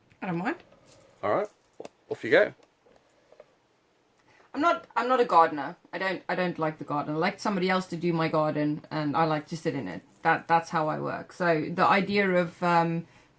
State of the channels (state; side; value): identical; both; correlation 1.00